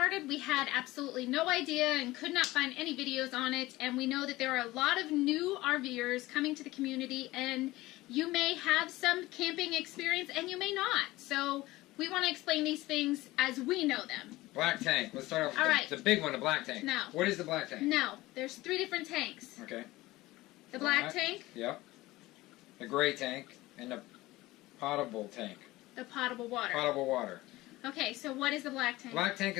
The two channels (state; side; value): quieter; right; 18.7 dB